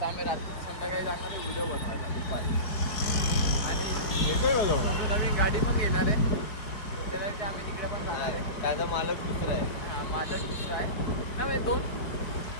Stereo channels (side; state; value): right; late; 4.5 ms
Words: आम्ही रात्री संध्याकाळी जाणार आहे व्हिडिओ बनवायला दुपारी. आणि सोनू नवीन गाडी पण घेणार आहे. त्याच्यासाठी आम्ही तिकडे पण जाणार आहे. त्याचा मालक दुसरा आहे. हा, मालक दुसरा आहे ना. म्हणजे 2